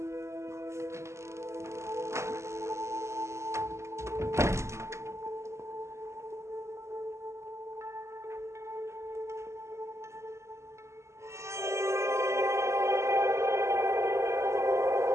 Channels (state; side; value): late; left; 0.13 ms